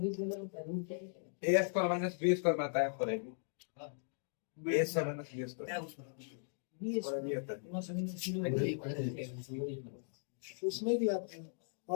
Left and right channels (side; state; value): right; silent; digital silence